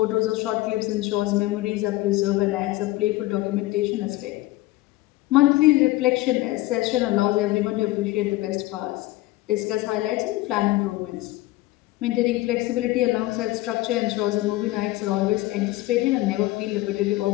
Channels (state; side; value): quieter; right; 18.1 dB